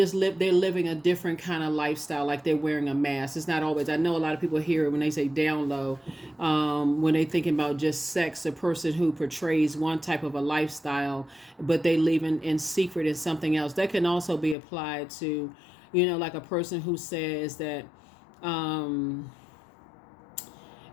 living a different kind of lifestyle, like they're wearing a mask. It's not always, I know a lot of people hear it when they say down low, when they thinking about just sex, a person who portrays one type of a lifestyle, but they live in secret in something else. That can also be applied to, like a person who says that, an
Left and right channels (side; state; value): right; drops out; at 14.6 s